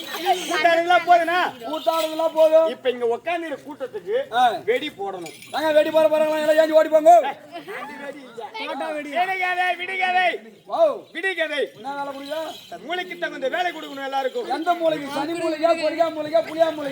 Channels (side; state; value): both; identical; correlation 1.00